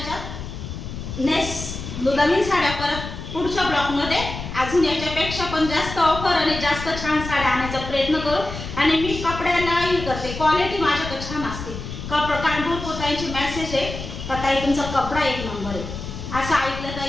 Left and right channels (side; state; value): left; noise; rumble, 8 dB below the sound